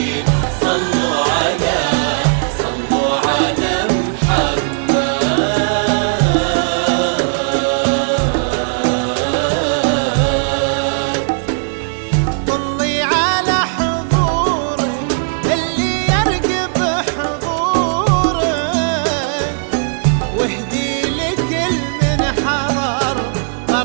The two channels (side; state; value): left; silent; 58 dB below the other